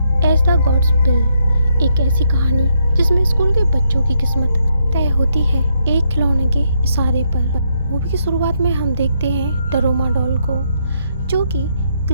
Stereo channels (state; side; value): inverted; both; correlation -0.76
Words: एज द गॉड्स विल, एक ऐसी कहानी जिसमें स्कूल के बच्चों की किस्मत तय होती है एक खिलौने के इशारे पर। मूवी की शुरुआत में हम देखते हैं डरोमा डॉल को, जो कि